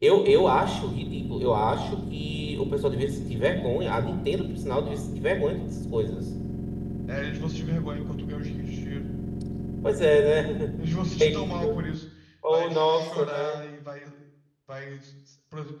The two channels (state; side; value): identical; both; correlation 1.00